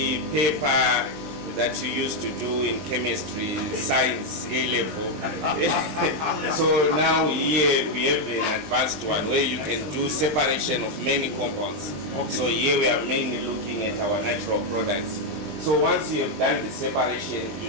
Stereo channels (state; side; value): late; left; 20 ms